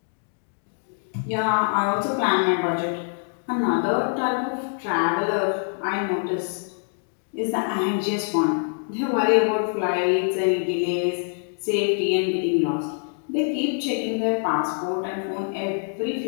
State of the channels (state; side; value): silent; right; 57 dB below the other